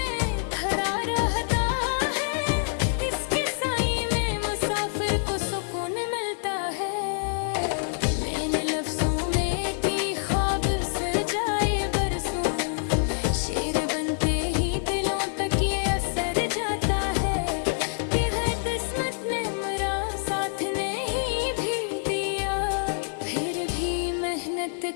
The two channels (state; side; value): silent; right; digital silence